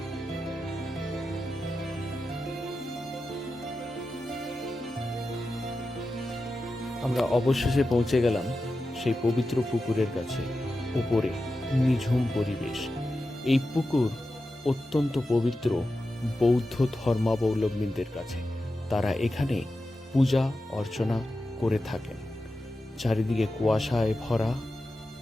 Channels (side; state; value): both; normal; correlation 0.91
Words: আমরা অবশেষে পৌঁছে গেলাম সেই পবিত্র পুকুরের কাছে। উপরে নিঝুম পরিবেশ। এই পুকুর অত্যন্ত পবিত্র বৌদ্ধ ধর্মাবলম্বীদের কাছে। তারা এখানে পূজা অর্চনা করে থাকেন। চারিদিকে কুয়াশায় ভরা,